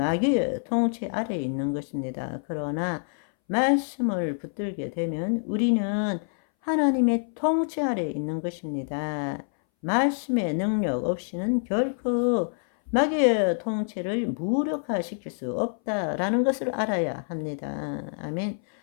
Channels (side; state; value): right; silent; 60 dB below the other